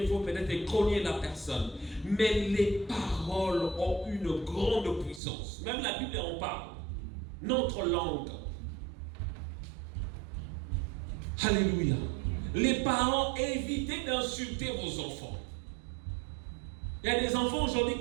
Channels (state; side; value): drops out; left; at 5.2 s